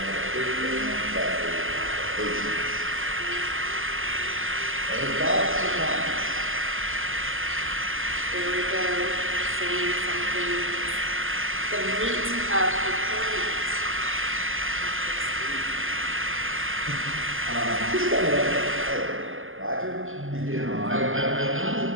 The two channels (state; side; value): late; left; 0.59 ms